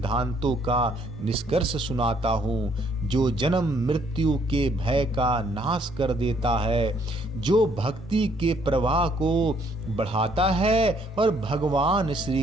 का निष्कर्ष सुनाता हूँ, जो जन्म मृत्यु के भय का नाश कर देता है, जो भक्ति के प्रवाह को बढ़ाता है और भगवान श्री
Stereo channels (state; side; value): normal; both; correlation 0.66